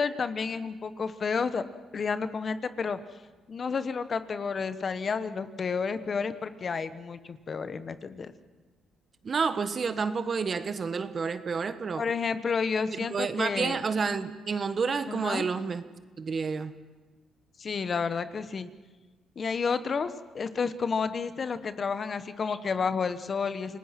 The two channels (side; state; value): both; normal; correlation 0.83